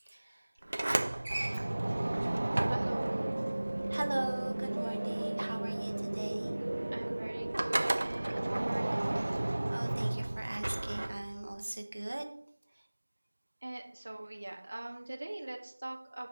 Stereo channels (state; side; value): inverted; both; correlation -1.00